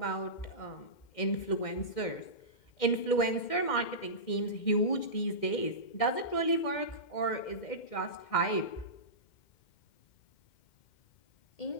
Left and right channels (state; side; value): late; right; 2.1 ms